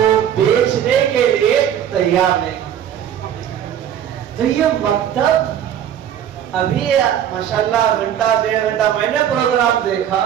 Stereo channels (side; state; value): left; quieter; 9.9 dB